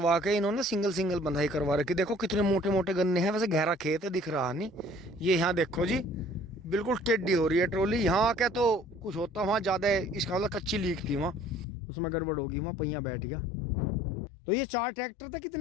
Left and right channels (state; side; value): drops out; right; at 11.7 s